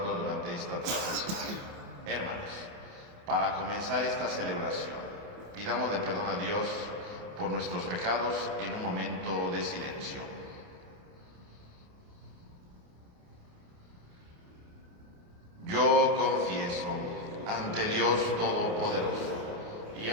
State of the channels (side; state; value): left; late; 28 ms